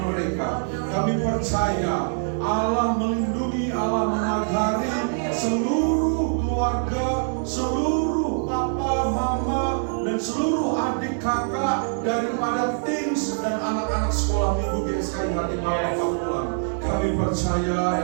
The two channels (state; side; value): silent; left; 63 dB below the other